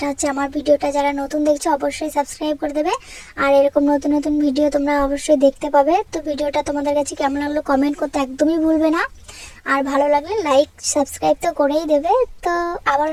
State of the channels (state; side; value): identical; both; correlation 1.00